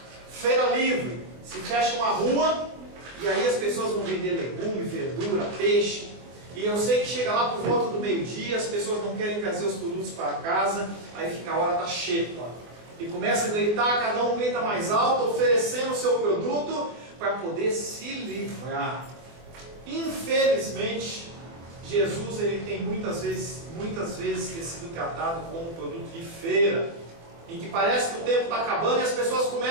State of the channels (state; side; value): late; left; 24 ms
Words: feira livre, se fecha uma rua, e aí as pessoas vão vender legume, verdura, peixe, e eu sei que chega lá por volta do meio-dia, as pessoas não querem trazer os produtos para casa, aí fica a hora da xepa, e começa a gritar, cada um grita mais alto, oferecendo o seu produto, para poder se livrar. Infelizmente, Jesus ele tem muitas vezes sido tratado como um produto de feira, em que parece que o tempo está acabando e as pessoas